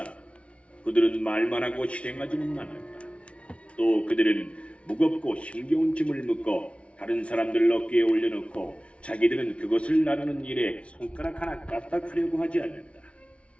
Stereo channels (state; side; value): late; right; 0.061 ms